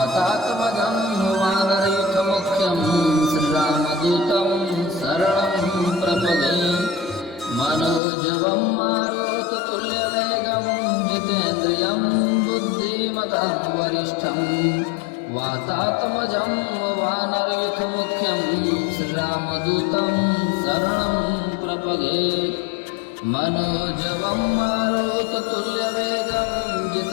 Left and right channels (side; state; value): right; drops out; at 8.0 s